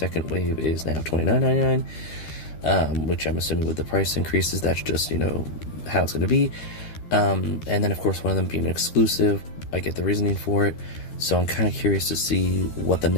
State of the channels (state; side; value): late; right; 12 ms